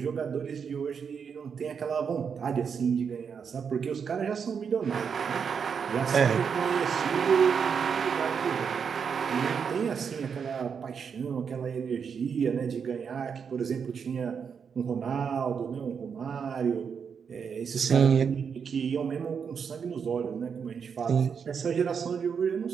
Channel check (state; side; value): quieter; left; 6.6 dB